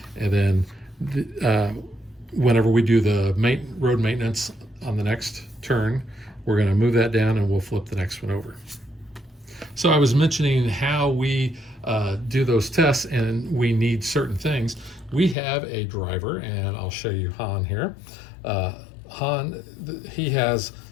And then whenever we do the road maintenance on the next turn, we're going to move that down and we'll flip the next one over. So I was mentioning how we do those tests, and we need certain things. We have a driver, and I'll show you Han here. Han, he has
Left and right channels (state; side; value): drops out; right; at 15.4 s